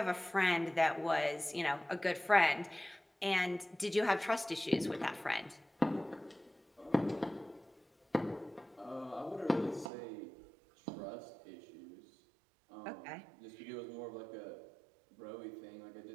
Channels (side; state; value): left; drops out; at 9.9 s